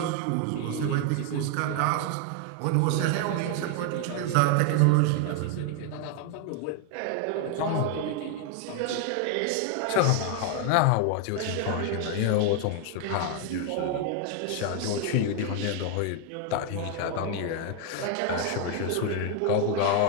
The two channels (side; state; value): both; different; correlation 0.01